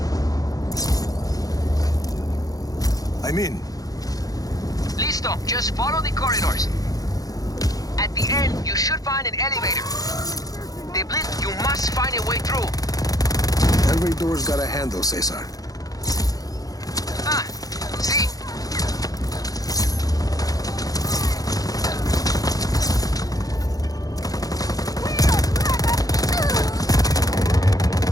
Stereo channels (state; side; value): late; right; 0.18 ms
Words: I'm in. Listo, just follow the corridors. At the end, you should find an elevator. The blitz, you must find a way through. Every door's got a handle, Cesar. Ah, see?